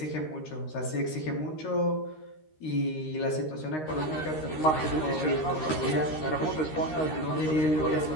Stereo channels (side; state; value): right; late; 13 ms